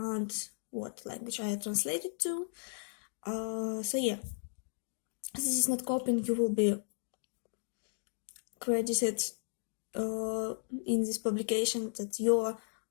what language I translated to. So yeah, this is not copying. You will be credited in this publication that you're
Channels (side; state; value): right; silent; digital silence